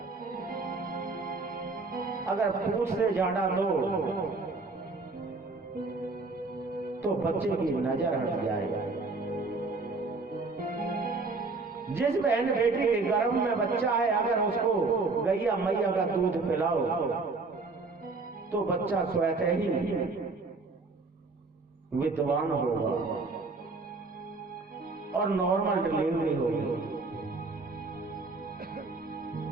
अगर पूछ से झाड़ा दो तो बच्चे की नजर हट जाए। जिस बहन बेटी के गर्भ में बच्चा है, अगर उसको गैया मैया का दूध पिलाओ तो बच्चा स्वतः ही विद्वान होगा और नॉर्मल डिलीवरी होगी।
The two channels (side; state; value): left; quieter; 3.8 dB